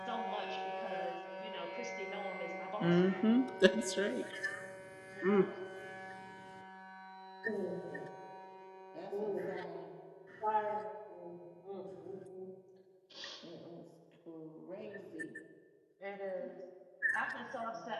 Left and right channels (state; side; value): identical; both; correlation 1.00